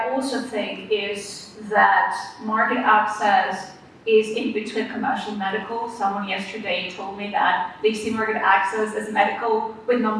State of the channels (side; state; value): both; identical; correlation 1.00